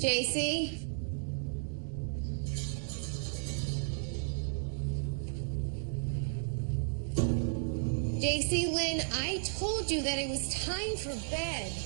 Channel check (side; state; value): left; silent; digital silence